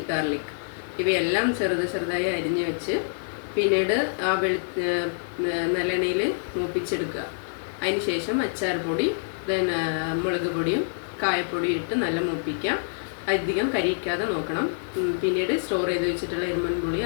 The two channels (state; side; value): silent; right; digital silence